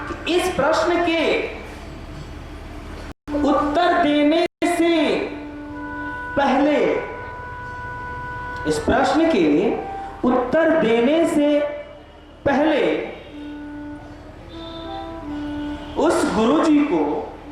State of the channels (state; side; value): identical; both; correlation 1.00